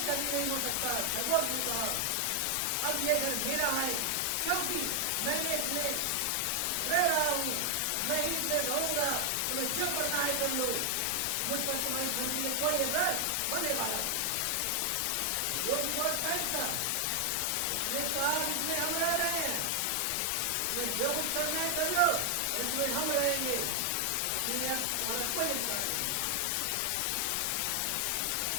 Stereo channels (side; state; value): both; different; correlation 0.00